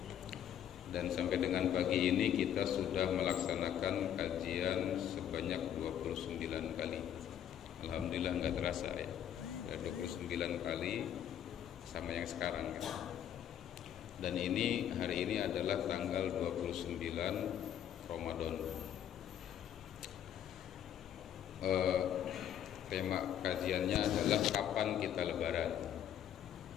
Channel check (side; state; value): right; quieter; 10.0 dB